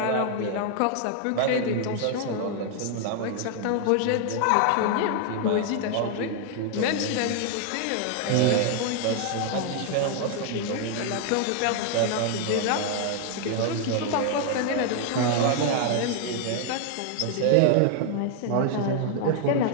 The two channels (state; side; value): different; both; correlation 0.00